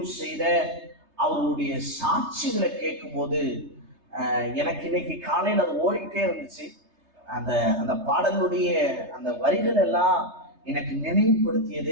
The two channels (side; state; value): left; late; 3.3 ms